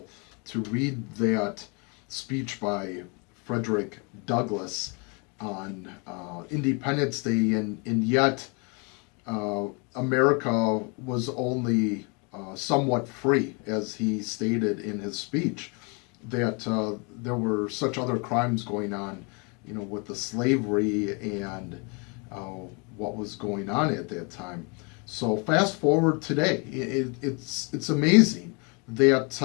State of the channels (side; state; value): right; quieter; 32.7 dB